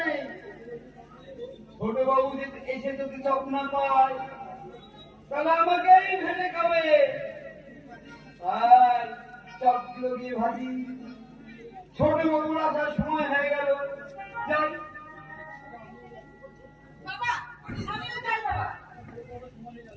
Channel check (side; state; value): both; identical; correlation 1.00